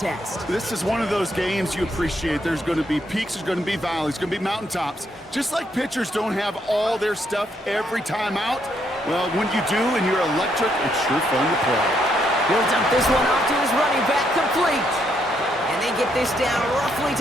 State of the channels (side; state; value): both; normal; correlation 0.75